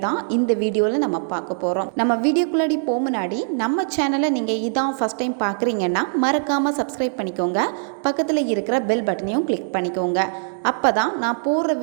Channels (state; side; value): silent; left; digital silence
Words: தான் இந்த வீடியோவில் நம்ம பார்க்க போகிறோம். நம்ம வீடியோக்குள்ளே முன்னாடி நம்ம சேனலை நீங்கள் இதான் ஃபஸ்ட் டைம் பார்க்குறீங்கன்னா மறக்காமல் சப்ஸ்கிரைப் பண்ணிக்கோங்க. பக்கத்தில் இருக்கிற பெல் பட்டனையும் கிளிக் பண்ணிக்கோங்க. அப்போ தான் நான் போடுற